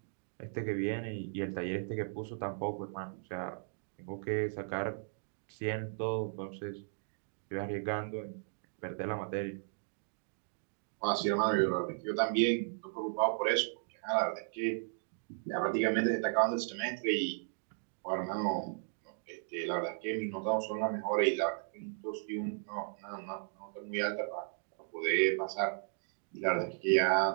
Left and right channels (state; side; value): silent; left; digital silence